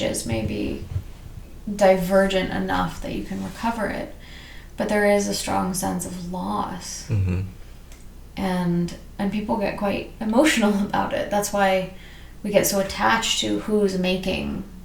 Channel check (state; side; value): identical; both; correlation 1.00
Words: may be divergent enough that you can recover it, but there is a strong sense of loss. Mm-hmm. And people get quite emotional about it. That's why we get so attached to who's making